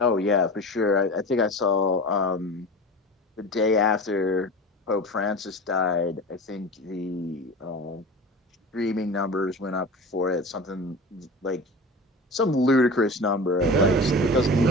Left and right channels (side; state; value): both; normal; correlation 0.33